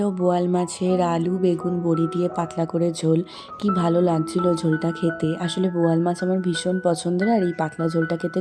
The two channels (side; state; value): both; identical; correlation 1.00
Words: বোয়াল মাছের আলু বেগুন বড়ি দিয়ে পাতলা করে ঝোল। কি ভালো লাগছিল ঝোলটা খেতে, আসলে বোয়াল মাছ আমার ভীষণ পছন্দের, আর এই পাতলা ঝোলটা খেতে